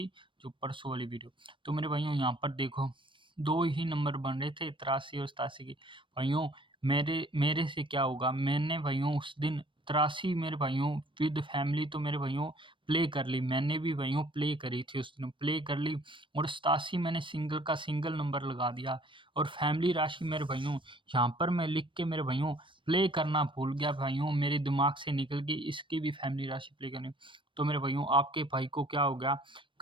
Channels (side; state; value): left; late; 0.24 ms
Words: जो परसों वाली वीडियो। तो मेरे भाइयों, यहाँ पर देखो, दो ही नंबर बन रहे थे, 83 और 87 की। भाइयों, मेरे मेरे से क्या होगा, मैंने भाइयों उस दिन 83 मेरे भाइयों विद फैमिली, तो मेरे भाइयों प्ले कर ली। मैंने भी भाइयों प्ले करी थी उस दिन, प्ले कर ली। और 87 मैंने सिंगल का सिंगल नंबर लगा दिया। और फैमिली राशि मेरे भाइयों, यहाँ पर मैं लिख के मेरे भाइयों प्ले करना भूल गया भाइयों, मेरे दिमाग से निकल गई, इसकी भी फैमिली राशि प्ले करनी। तो मेरे भाइयों, आपके भाई को क्या हो गया,